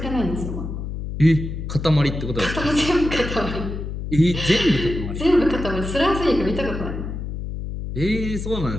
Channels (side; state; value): left; noise; hum, 6 dB below the sound